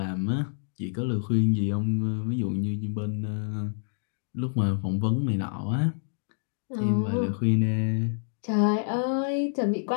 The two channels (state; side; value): silent; right; digital silence